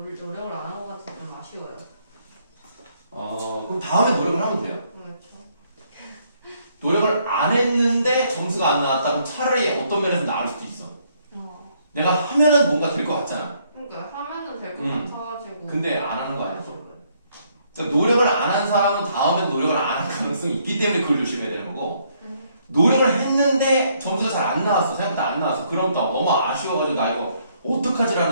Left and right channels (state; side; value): inverted; both; correlation -0.69